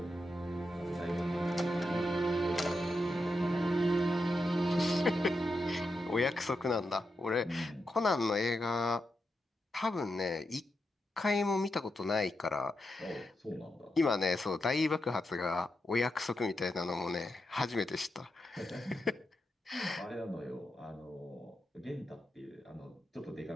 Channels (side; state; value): both; normal; correlation 0.86